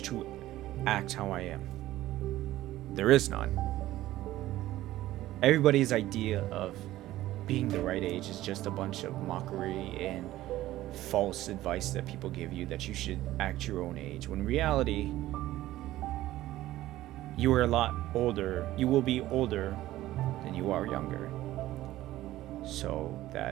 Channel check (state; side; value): quieter; left; 15.3 dB